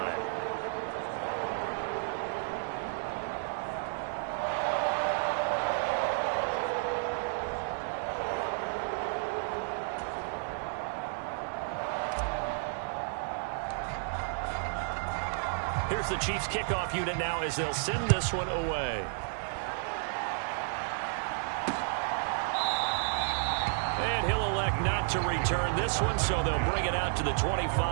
Here's the Chiefs kickoff unit now as they'll send this one away. And he'll elect not to return this one, so they'll bring it out to the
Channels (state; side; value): silent; left; 56 dB below the other